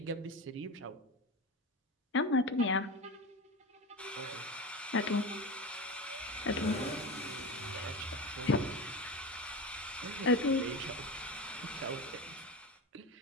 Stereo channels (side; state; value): both; normal; correlation 0.24